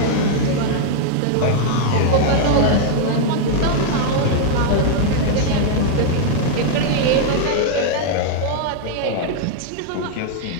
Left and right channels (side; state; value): both; different; correlation -0.01